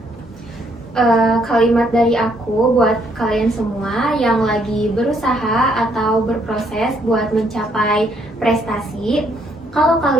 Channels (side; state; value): both; normal; correlation 0.70